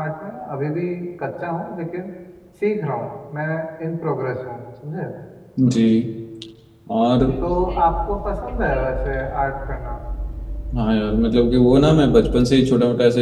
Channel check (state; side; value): identical; both; correlation 1.00